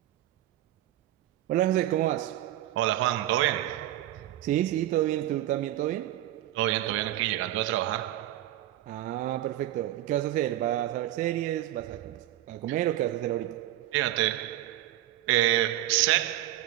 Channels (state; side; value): quieter; left; 13.9 dB